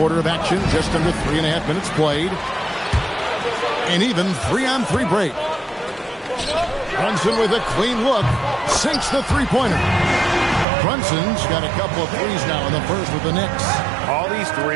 of action, just under 3.5 minutes played. And even 3-on-3 break. Brunson with a clean look. Sinks the three-pointer. Brunson's got a couple of threes now in the first with the Knicks. All these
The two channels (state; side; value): drops out; left; at 10.7 s